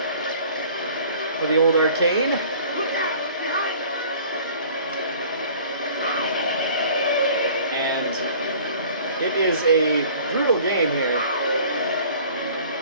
for the old arcade. Look out! Behind us! And it is a brutal game here.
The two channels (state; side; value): inverted; both; correlation -0.49